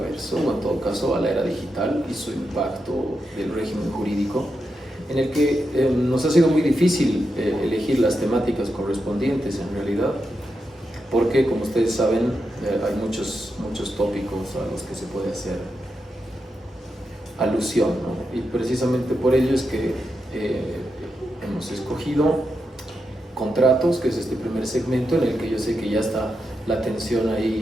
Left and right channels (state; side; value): normal; both; correlation 0.86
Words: o en todo caso a la era digital y su impacto del régimen jurídico, en el que nos ha sido muy difícil elegir las temáticas correspondientes en realidad, porque como ustedes saben hay muchos tópicos a los que se puede hacer alusión, ¿no? Y precisamente por ello es que hemos escogido contratos, que es este primer segmento en el que yo sé que ya está la atención